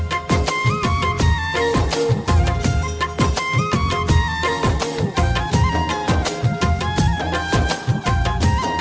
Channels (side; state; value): both; identical; correlation 1.00